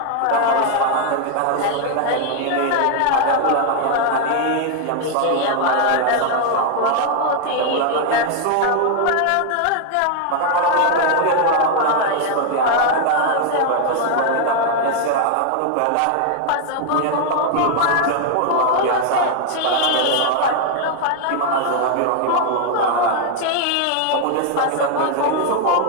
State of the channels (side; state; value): both; different; correlation 0.00